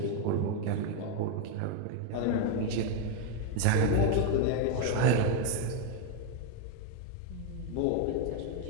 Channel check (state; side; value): different; both; correlation 0.01